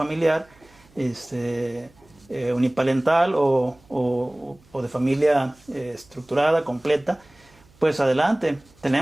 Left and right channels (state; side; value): noise; right; hum, 29 dB below the sound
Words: uniparental o de familia estructurada, completa, pues adelante.